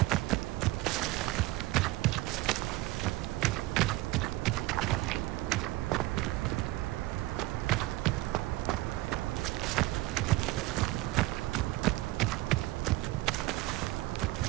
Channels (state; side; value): quieter; left; 18.7 dB